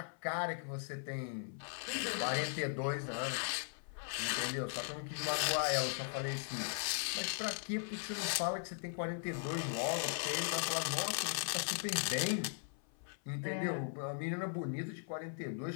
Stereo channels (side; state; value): right; silent; 52 dB below the other